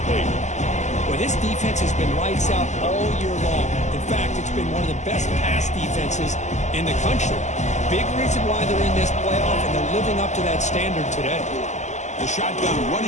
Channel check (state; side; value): late; right; 0.34 ms